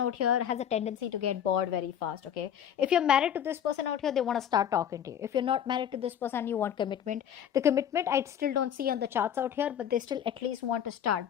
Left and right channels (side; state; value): right; quieter; 9.4 dB